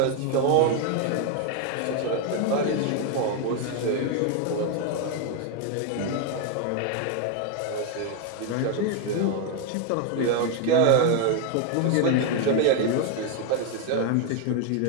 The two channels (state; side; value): different; both; correlation 0.01